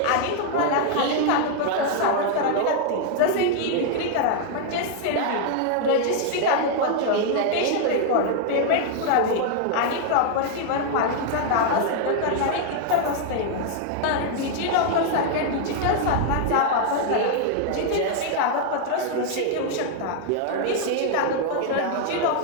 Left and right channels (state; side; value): different; both; correlation 0.00